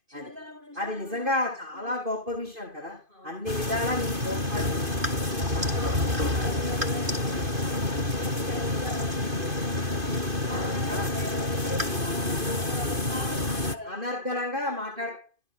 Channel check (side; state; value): left; late; 2.5 ms